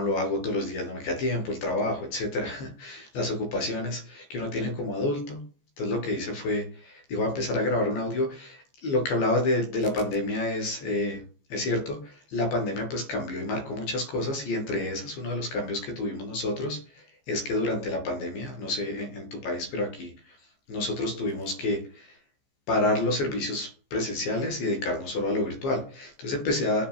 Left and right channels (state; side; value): late; right; 15 ms